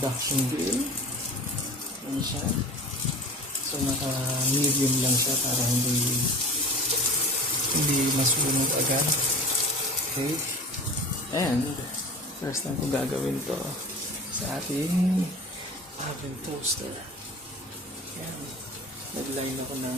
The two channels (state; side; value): normal; both; correlation 0.38